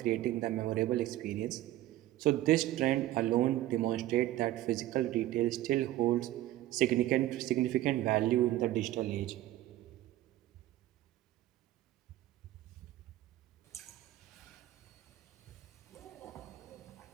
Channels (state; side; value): quieter; left; 15.0 dB